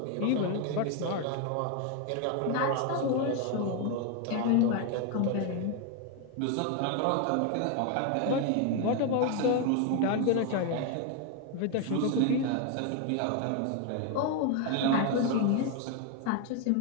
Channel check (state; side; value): different; both; correlation 0.01